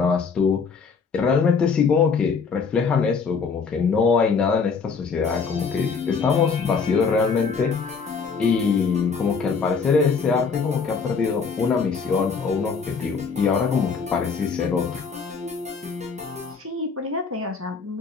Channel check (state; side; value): quieter; right; 5.4 dB